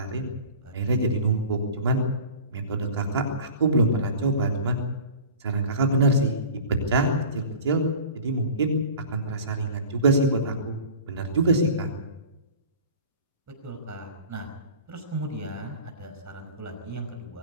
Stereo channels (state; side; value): inverted; both; correlation -0.39